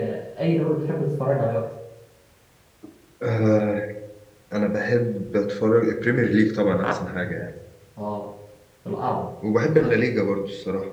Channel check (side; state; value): both; identical; correlation 1.00